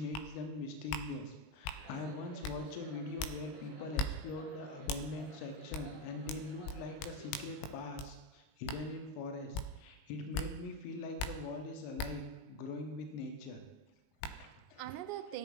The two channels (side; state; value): right; late; 19 ms